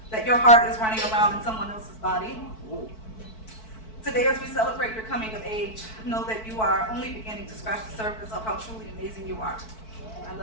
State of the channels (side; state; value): right; late; 4.6 ms